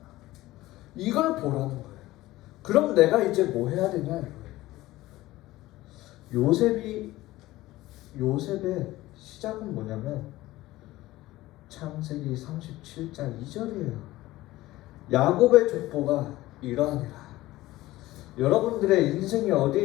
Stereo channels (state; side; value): quieter; right; 17.3 dB